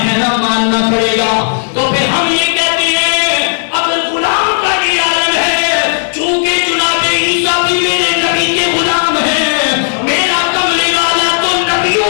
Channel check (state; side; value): silent; right; digital silence